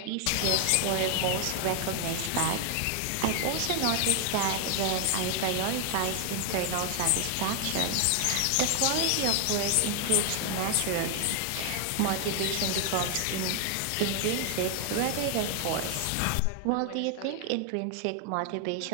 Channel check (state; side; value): different; both; correlation 0.00